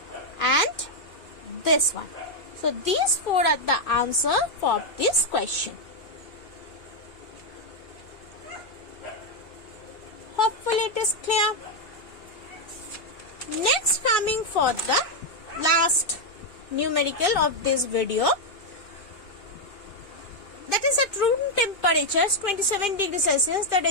and this one. So these 4 are the answer for this question. Hopefully it is clear. Next, coming for the last numerical of this video, that is at room temperature 27 degrees Celsius. The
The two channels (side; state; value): right; late; 2.6 ms